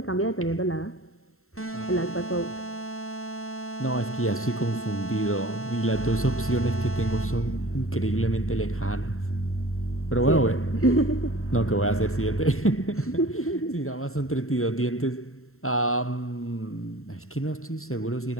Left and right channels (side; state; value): right; late; 0.62 ms